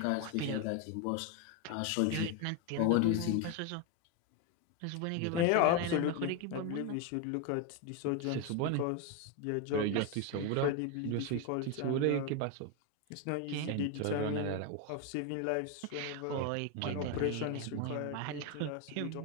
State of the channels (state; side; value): different; both; correlation 0.01